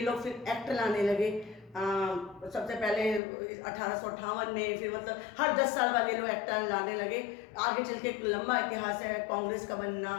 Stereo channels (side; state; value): right; drops out; at 3.2 s